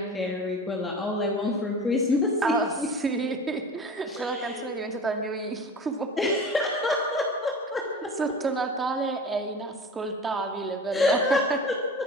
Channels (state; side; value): normal; both; correlation 0.35